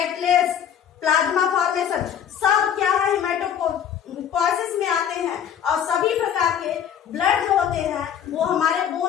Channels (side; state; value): right; quieter; 9.0 dB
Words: plasma formation, सब क्या है? हिमेटोपोइसिस में आते हैं। और सभी प्रकार के ब्लड जो होते हैं वो हमारे